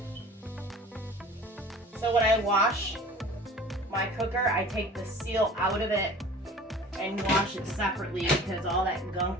So when I wash my cooker, I take the seal out of it and wash it separately because all that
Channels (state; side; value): normal; both; correlation 0.44